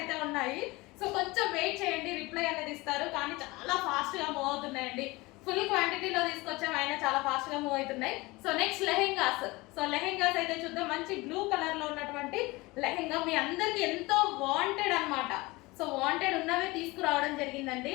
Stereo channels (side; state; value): right; quieter; 22.3 dB